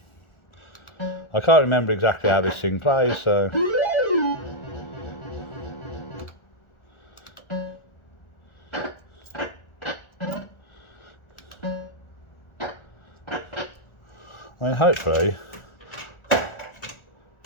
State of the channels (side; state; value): right; late; 1.4 ms